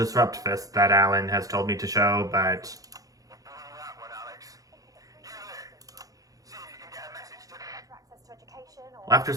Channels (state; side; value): late; left; 0.17 ms